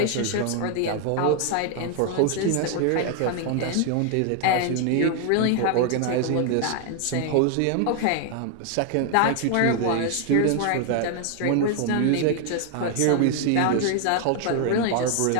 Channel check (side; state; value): both; different; correlation 0.00